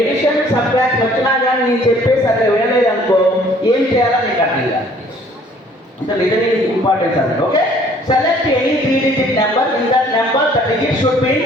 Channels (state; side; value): normal; both; correlation 0.57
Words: subtract వచ్చినా కానీ నేను చెప్పేసి అట్లా వినలేదు అనుకో, ఏం చేయాలో నీకు అర్థం కాదు. అంటే లిజనింగ్ ఇంపార్టెన్స్ అంటే. Okay, select any 3-digit number, in that number the digit should be